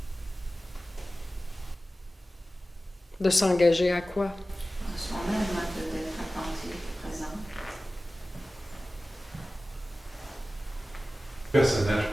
De s'engager à quoi? En soi-même, d'être attentif, présent. Le personnage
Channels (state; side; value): normal; both; correlation 0.96